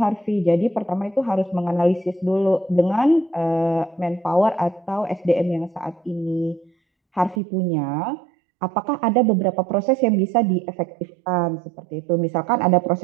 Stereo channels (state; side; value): drops out; left; at 7.4 s